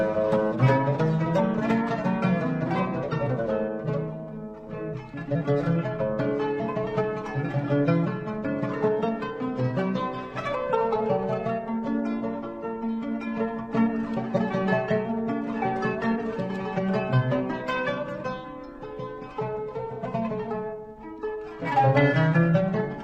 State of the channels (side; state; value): both; identical; correlation 1.00